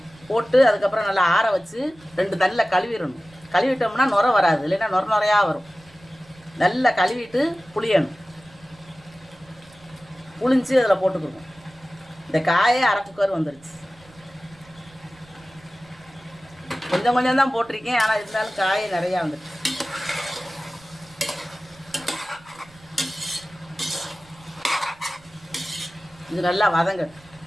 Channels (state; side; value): noise; right; rumble, 26 dB below the sound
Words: போட்டு அதுக்கப்புறம் நல்லா ஆற வச்சு 2 தண்ணியில் கழுவிடணும். கழுவிட்டோம்னா நுரை வராது, இல்லைன்னா நுரையாக வரும். நல்லா கழுவிட்டு புளியணும். புளிஞ்சு அதில் போட்டுக்கணும். இந்த காயே அரை குக்கர் வந்துடுச்சு. கொஞ்சம் கொஞ்சம் தான் போட்டிருக்கேன், ஆனால் இருந்தாலும் காயே நிறையா வந்துடுச்சு. இது நல்லா வதங்கட்டும்.